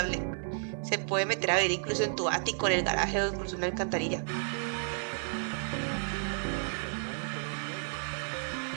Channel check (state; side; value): silent; left; digital silence